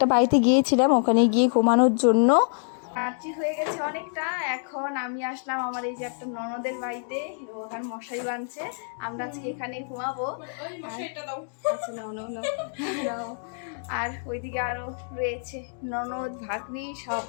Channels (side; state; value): right; silent; digital silence